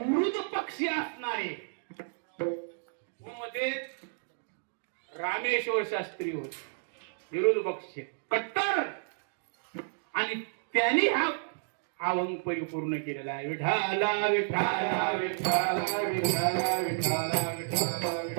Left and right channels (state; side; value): silent; left; digital silence